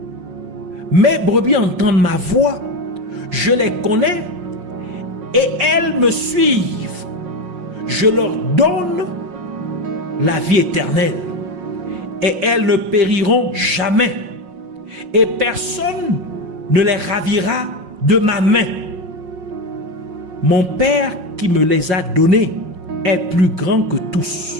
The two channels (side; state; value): left; late; 5.5 ms